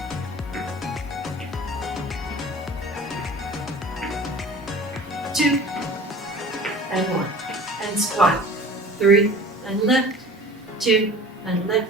2, and 1, and squat. 3, and lift. 2, and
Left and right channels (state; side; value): normal; both; correlation 0.43